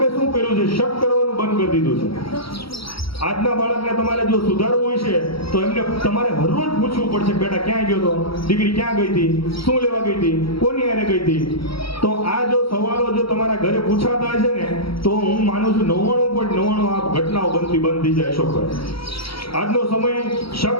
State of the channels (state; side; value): late; right; 0.75 ms